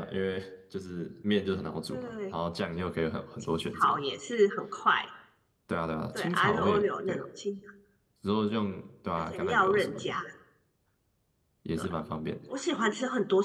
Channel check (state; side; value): identical; both; correlation 1.00